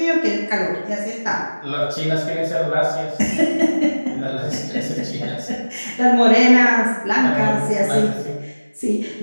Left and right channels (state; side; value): inverted; both; correlation -1.00